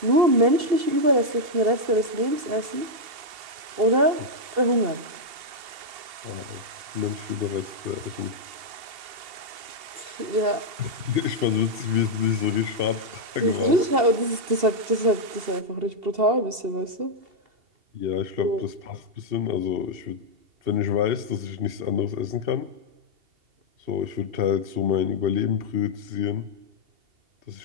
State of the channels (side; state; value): left; late; 2.7 ms